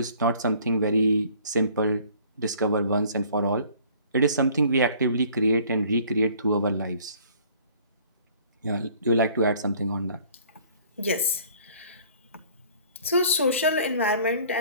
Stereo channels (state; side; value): inverted; both; correlation -0.54